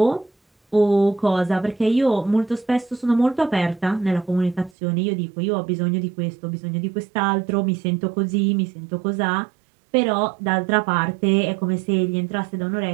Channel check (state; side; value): drops out; left; at 4.7 s